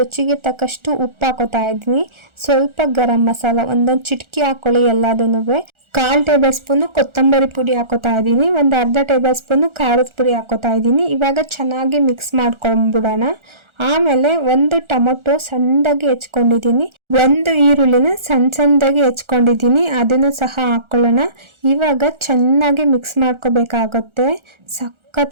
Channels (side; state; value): left; late; 1.4 ms